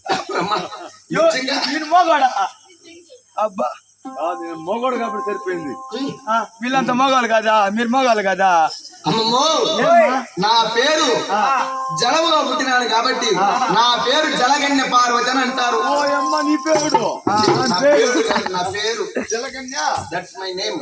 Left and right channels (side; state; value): both; identical; correlation 1.00